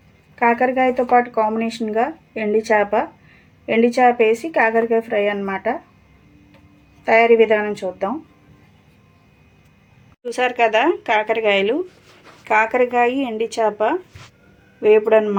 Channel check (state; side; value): identical; both; correlation 1.00